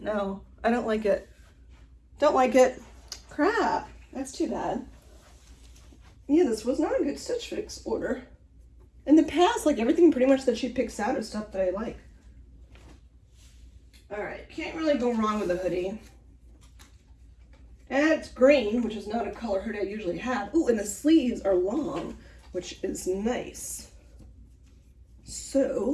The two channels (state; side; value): identical; both; correlation 1.00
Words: I don't like it. Don't like it. Crap, that's too bad. Yeah, this was not a good Stitch Fix order. In the past, like everything pretty much that she picks out is stuff that I like. All right, can't really go wrong with a hoodie. And it's green, which is not a color hoodie I usually have. Ooh, and the sleeves are long, which is nice.